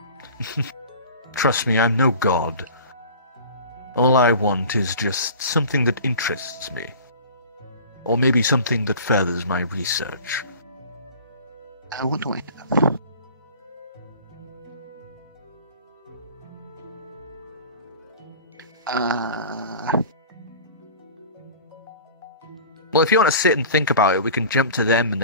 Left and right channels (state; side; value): inverted; both; correlation -0.41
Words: Trust me, I'm no god. All I want is just something that interests me. Or maybe something that furthers my research. What do I have? Well, if you want to sit and think about it, we can jump to them and